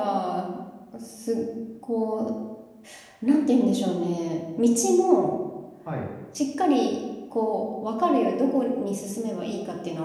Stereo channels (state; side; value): identical; both; correlation 1.00